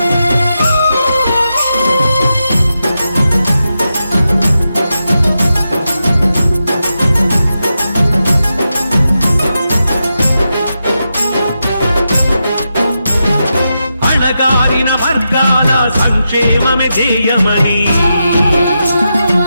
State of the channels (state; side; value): inverted; both; correlation -0.88